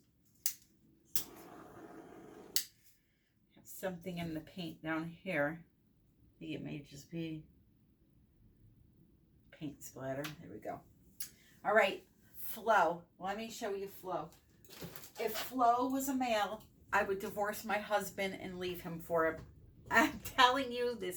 Have something in the paint down here. I think it may just be paint splatter. There we go. All right, Flo. Let me show you Flo. If Flo was a male, I would divorce my husband and leave him for him. I'm telling you,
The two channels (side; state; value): both; identical; correlation 1.00